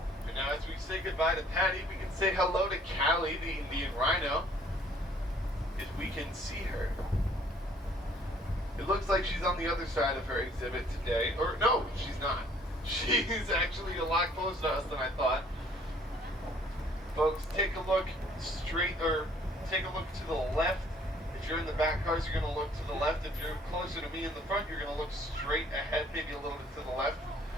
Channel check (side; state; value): both; normal; correlation 0.59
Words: And now, as we say goodbye to Patty, we can say hello to Callie, the Indian rhino, if we can see her. It looks like she's on the other side of her exhibit today. Or, no, she's not. She's actually a lot closer to us than I thought. Folks, take a look take a look to the left. If you're in the back cars, you're going to look to the left. If you're closer to me in the front, you're going to look straight ahead, maybe a little bit to the left,